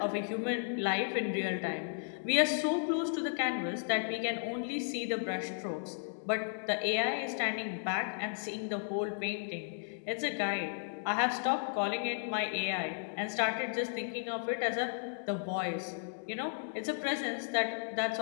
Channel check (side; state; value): right; silent; digital silence